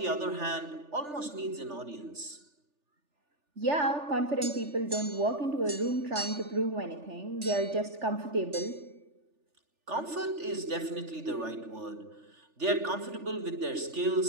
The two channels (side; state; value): left; late; 3.4 ms